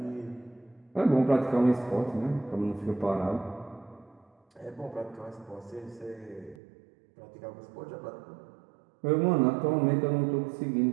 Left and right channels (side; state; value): left; drops out; at 6.6 s